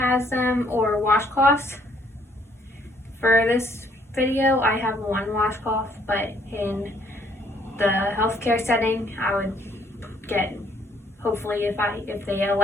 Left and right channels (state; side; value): normal; both; correlation 0.66